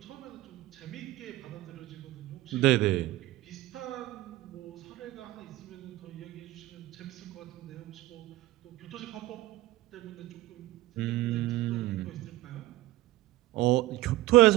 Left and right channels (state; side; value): quieter; left; 17.6 dB